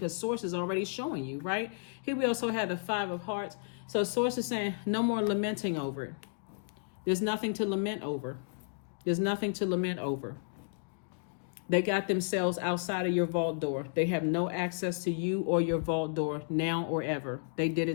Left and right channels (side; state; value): right; silent; digital silence